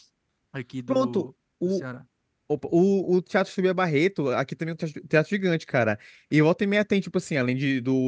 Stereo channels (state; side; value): identical; both; correlation 1.00